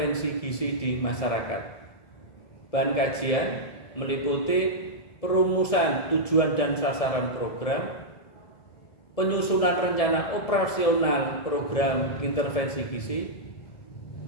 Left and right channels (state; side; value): late; right; 1.7 ms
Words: gizi di masyarakat. Bahan kajian meliputi perumusan tujuan dan sasaran program, penyusunan rencana operasional program intervensi gizi,